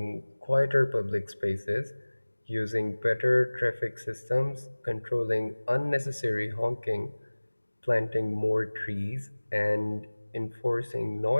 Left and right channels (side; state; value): both; inverted; correlation -1.00